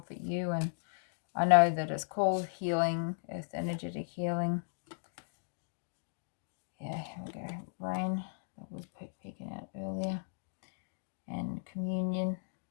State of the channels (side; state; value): right; silent; digital silence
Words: you, and I know that it's called healing, earth energetic healing. Yeah, here we go. Rain, that was peeking out earlier. And communion.